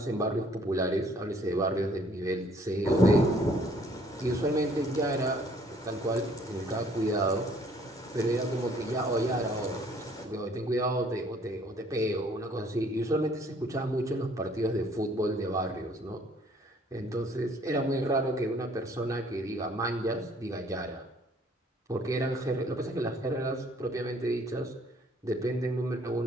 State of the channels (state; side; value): normal; both; correlation 0.60